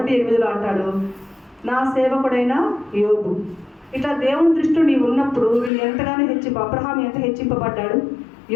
అంటాడు, నా సేవకుడైన యోబు. ఇట్లా దేవుని దృష్టిలో నీవు ఉన్నప్పుడు వీళ్ళు ఎంతగానో అబ్రహాం ఎంత హెచ్చింపబడ్డాడు,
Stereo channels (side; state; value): right; drops out; at 5.7 s